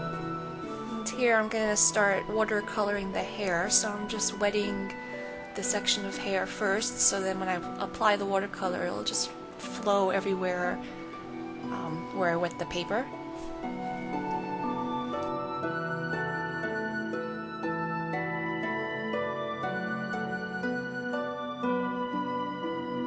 Here I'm going to start watercoloring the hair, so I'm just wetting the section of hair first, so then when I apply the watercolor it'll just flow everywhere where I wet the paper.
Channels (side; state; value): both; identical; correlation 1.00